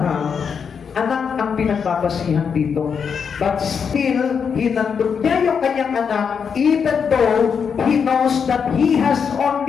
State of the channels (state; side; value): quieter; right; 6.6 dB